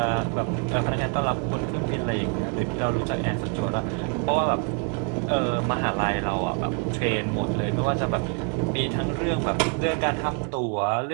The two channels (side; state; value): left; quieter; 39.7 dB